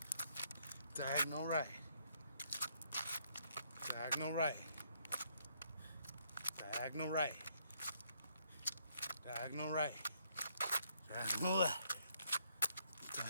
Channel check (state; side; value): inverted; both; correlation -0.70